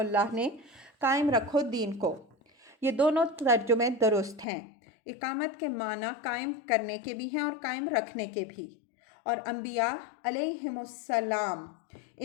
نے قائم رکھو دین کو۔ یہ دونوں ترجمے درست ہیں۔ اقامت کے معنی قائم کرنے کے بھی ہیں اور قائم رکھنے کے بھی، اور انبیاء علیہم السلام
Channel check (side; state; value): right; drops out; at 4.5 s